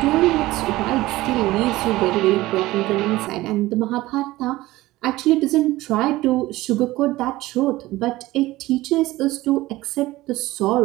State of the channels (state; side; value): quieter; left; 17.9 dB